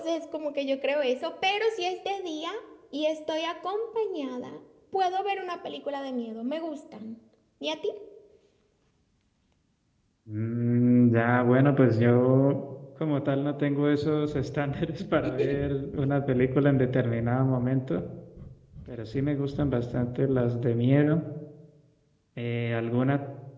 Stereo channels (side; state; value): both; identical; correlation 1.00